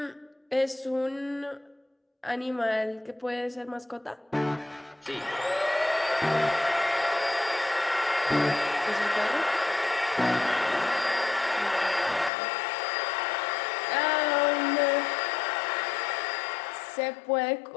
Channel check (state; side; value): drops out; right; at 12.3 s